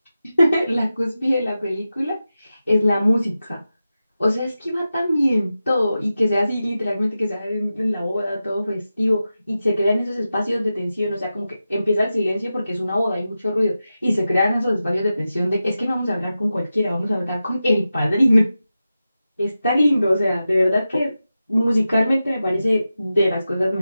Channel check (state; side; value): inverted; both; correlation -0.92